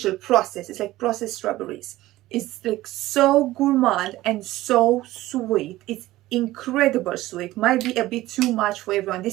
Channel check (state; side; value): quieter; left; 16.8 dB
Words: processed. It's like processed strawberries. It's like so gourmand and so sweet. It's incredible sweet. Might be a bit too much for everyone.